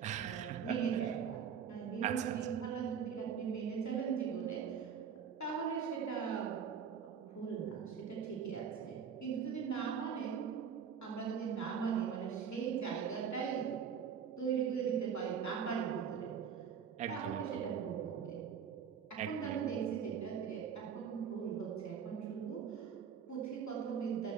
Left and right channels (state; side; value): quieter; left; 7.3 dB